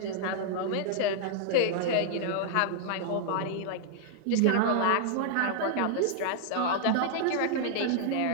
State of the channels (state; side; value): different; both; correlation -0.01